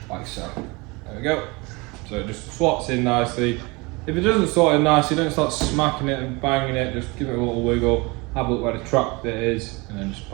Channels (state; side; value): quieter; left; 26.1 dB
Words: like so. There we go. So it just slots in nicely. If it doesn't slot in nicely, don't start smacking it and banging it, just give it a little wiggle, have a look where the track bit is, and then just